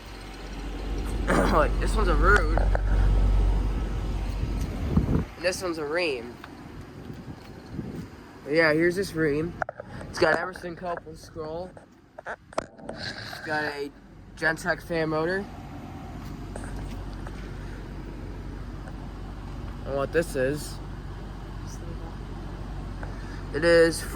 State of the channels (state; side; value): identical; both; correlation 1.00